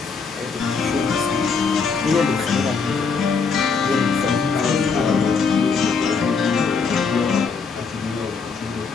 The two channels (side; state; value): right; quieter; 5.2 dB